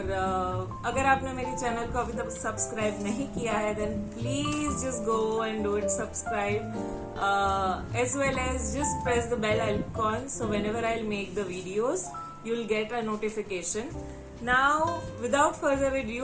अगर आपने मेरी channel को अभी तक subscribe नहीं किया है then please just go and do it subscribe as well as just press the bell icon so whenever I'll make the videos you'll get a notification. Now without further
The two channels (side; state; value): both; identical; correlation 1.00